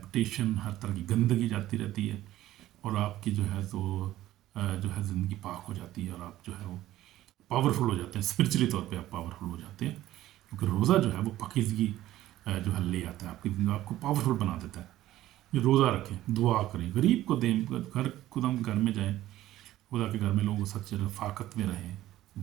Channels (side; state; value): left; quieter; 14.6 dB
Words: हर तरह की गंदगी जाती रहती है, और आपकी जो है तो जो है ज़िंदगी पाक हो जाती है, और आप जो है वो पावरफुल हो जाते हैं। स्पिरिचुअली तौर पे आप पावरफुल हो जाते हैं, क्योंकि रोज़ा जो है वो पकीज़गी जो है ले आता है आपकी ज़िंदगी, आपको पावरफुल बना देता है। ये रोज़ा रखें, दुआ करें, गरीब को दें, घर खुद हम घर में जाएँ, खुदा के घर में लोग सच्चे रफ़ाकत में रहें,